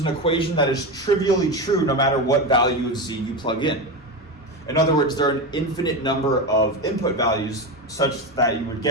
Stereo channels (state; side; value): normal; both; correlation 0.17